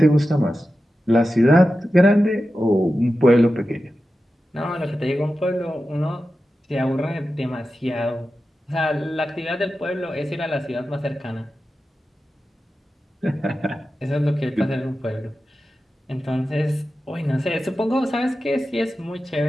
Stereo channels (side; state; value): both; normal; correlation 0.92